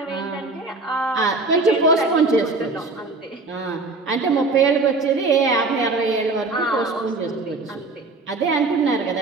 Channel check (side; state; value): left; quieter; 3.5 dB